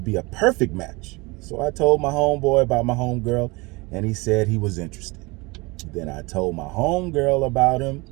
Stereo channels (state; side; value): quieter; left; 25.3 dB